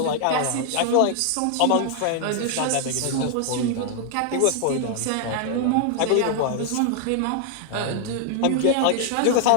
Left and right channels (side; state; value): both; different; correlation 0.00